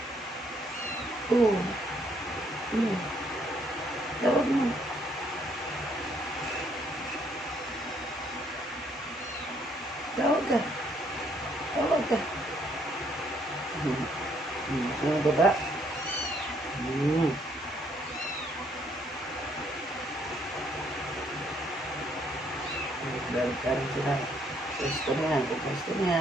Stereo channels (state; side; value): normal; both; correlation 0.68